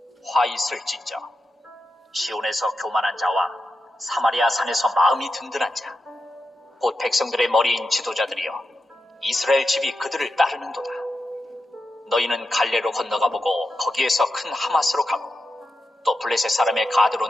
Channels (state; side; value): normal; both; correlation 0.88